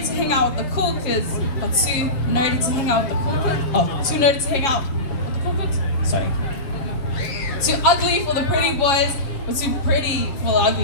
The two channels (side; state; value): right; late; 7.3 ms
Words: to hang out with the cool kids, but too nerdy to hang out with the cool kids. Oh, too nerdy to hang out with the cool kids? Sorry. Too ugly for the pretty boys, but too pretty for the